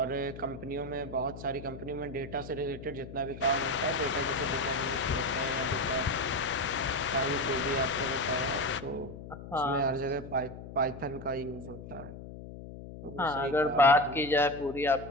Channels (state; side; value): noise; left; hum, 12 dB below the sound